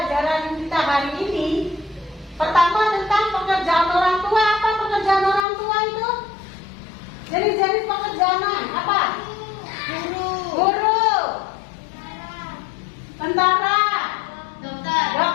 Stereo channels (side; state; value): right; drops out; at 5.5 s